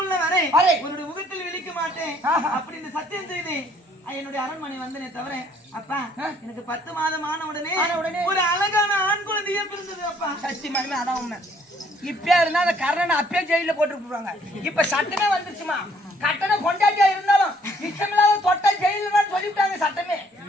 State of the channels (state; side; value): normal; both; correlation 0.63